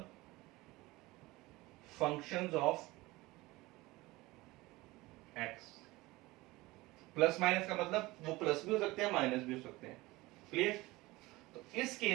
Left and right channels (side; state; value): left; quieter; 20.6 dB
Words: functions of x। Plus minus का मतलब वो प्लस भी हो सकते हैं, माइनस भी हो सकते हैं। क्लियर? तो इस